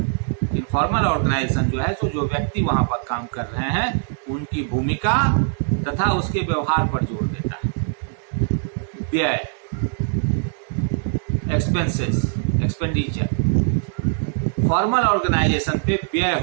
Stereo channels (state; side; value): silent; left; 64 dB below the other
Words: इनफॉर्मल ऑर्गेनाइजेशन जो है तो जो व्यक्ति वहां पर काम कर रहे हैं उनकी भूमिका तथा उसके व्यवहार पर जोर देता है। व्यय, एक्सपेंसेस, एक्सपेंडिचर, फॉर्मल ऑर्गेनाइजेशन पे व्यय